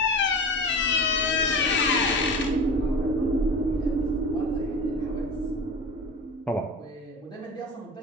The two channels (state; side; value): normal; both; correlation 0.31